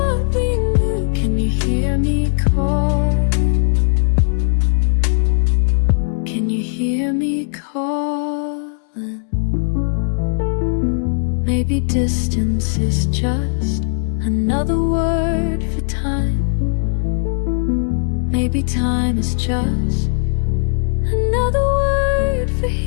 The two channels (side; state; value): right; silent; digital silence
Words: we knew. Can you hear me calling? Can you hear me calling? Maybe distance is just another word for time. Maybe time is just another word for